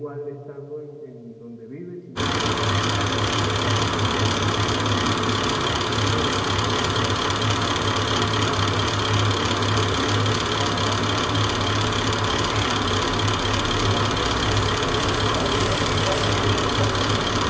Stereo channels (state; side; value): identical; both; correlation 1.00